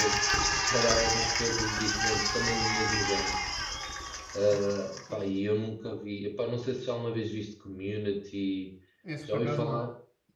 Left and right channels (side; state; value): both; identical; correlation 1.00